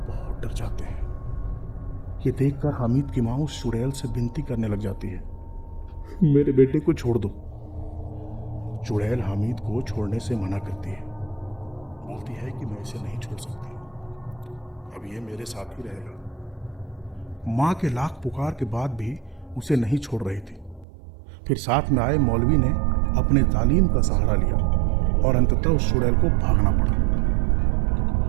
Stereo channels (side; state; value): left; drops out; at 20.9 s